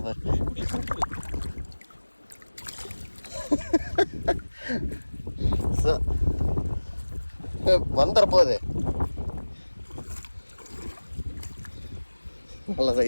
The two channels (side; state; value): both; inverted; correlation -1.00